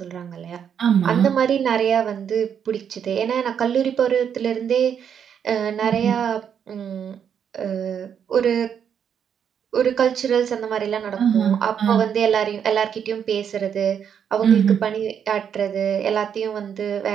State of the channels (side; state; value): left; quieter; 8.1 dB